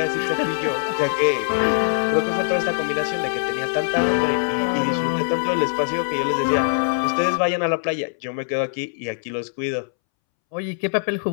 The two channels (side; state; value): right; silent; 64 dB below the other